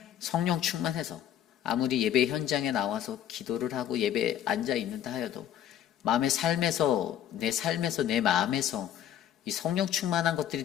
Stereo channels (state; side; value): quieter; right; 10.7 dB